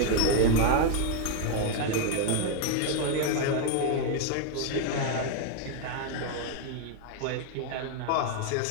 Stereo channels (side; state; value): both; different; correlation 0.01